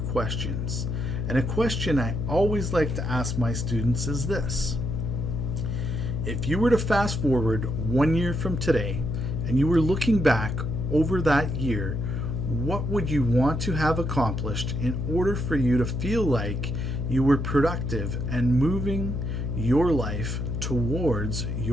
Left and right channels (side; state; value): left; noise; hum, 2 dB below the sound